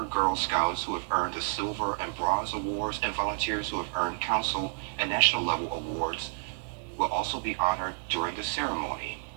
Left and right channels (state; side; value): silent; left; digital silence